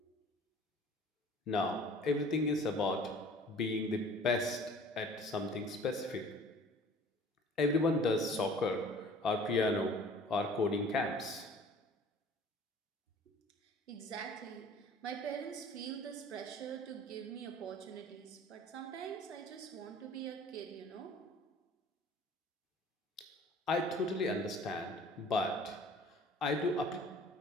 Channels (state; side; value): normal; both; correlation 0.49